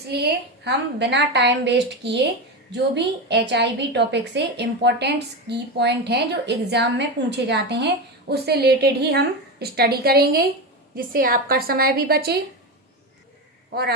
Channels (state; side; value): normal; both; correlation 0.17